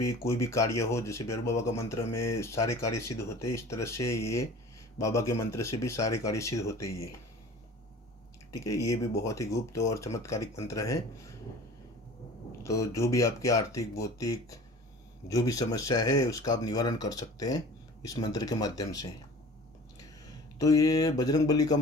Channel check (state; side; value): normal; both; correlation 0.43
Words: कोई भी कार्य हो, जैसे भैरू बाबा का मंत्र में सारे कार्य सिद्ध होते हैं, इस तरह से ये बाबा के मंत्र से भी सारे कार्य सिद्ध होते हैं ये। ठीक है, ये भी बहुत ही गुप्त और चमत्कारिक मंत्र है। तो जो भी आपके आर्थिक भौतिक जो भी समस्या है उसका आप निवारण कर सकते हैं इस मंत्र के माध्यम से। तो ये बजरंगबली का